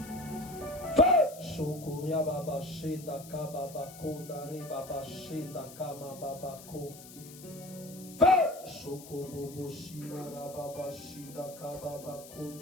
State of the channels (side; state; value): left; noise; hiss, 17 dB below the sound